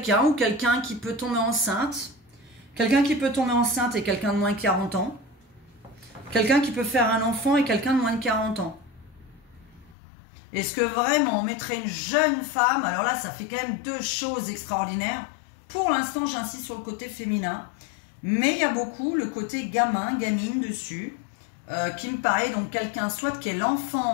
ou quelqu'un qui peut tomber enceinte. Quelqu'un qui peut tomber enceinte et quelqu'un de moins de 40 ans. Quelqu'un qui peut faire un enfant et quelqu'un de moins de 40 ans. Est-ce que vraiment on mettrait une jeune femme? Alors là, ça fait quand même deux choses extraordinaires. Pour l'instant, j'insiste sur le côté féminin. Mais il y a beaucoup le côté gamin, gamine dessus. Qui me paraît donc quelqu'un, soit qui est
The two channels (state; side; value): drops out; right; at 10.0 s